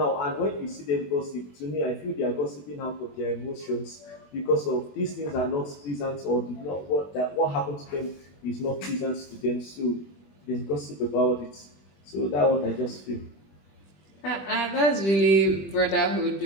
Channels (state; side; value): late; right; 21 ms